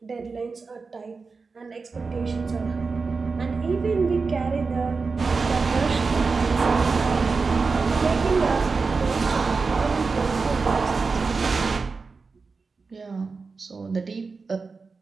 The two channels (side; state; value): left; quieter; 4.5 dB